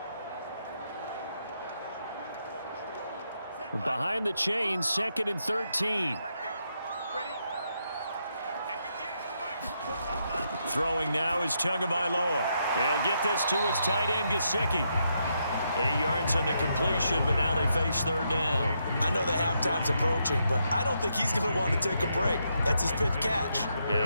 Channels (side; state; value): both; inverted; correlation -0.79